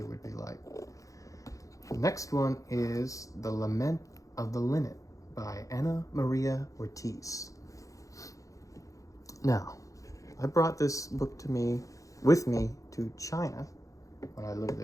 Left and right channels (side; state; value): right; late; 0.16 ms